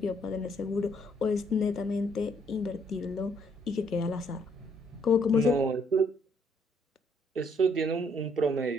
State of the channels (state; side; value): normal; both; correlation 0.68